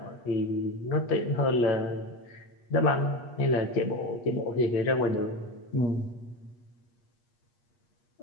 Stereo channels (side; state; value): right; late; 8.3 ms